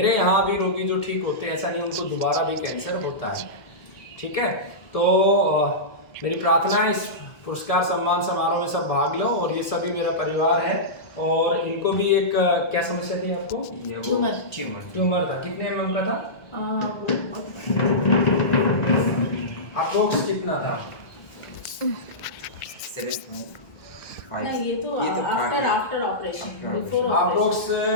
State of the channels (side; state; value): right; late; 1.7 ms